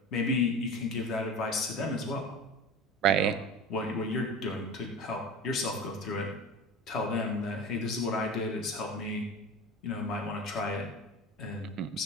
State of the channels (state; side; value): normal; both; correlation 0.32